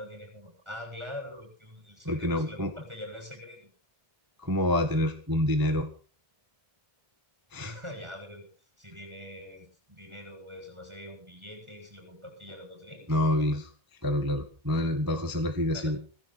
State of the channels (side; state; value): left; late; 1.0 ms